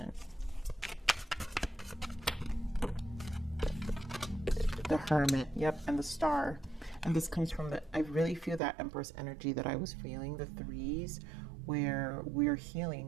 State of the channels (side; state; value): left; drops out; at 8.6 s